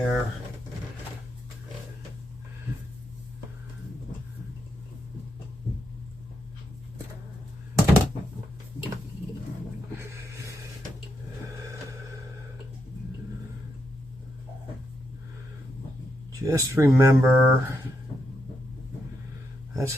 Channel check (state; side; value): normal; both; correlation 0.81